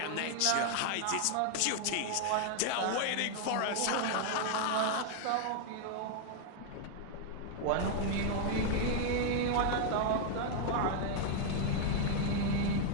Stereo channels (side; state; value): both; different; correlation 0.00